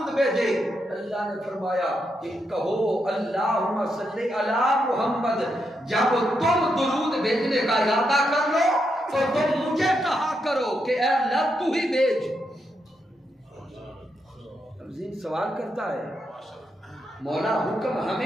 بھیجے، اللہ نے فرمایا کہ کہو اللہم صلی علی محمد۔ جب تم درود بھیجنے کا ارادہ کر لو تو تم مجھے کہا کرو کہ اے اللہ تو ہی بھیج۔ اب ذہن سوال کرتا ہے، مولا حکم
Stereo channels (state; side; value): normal; both; correlation 0.82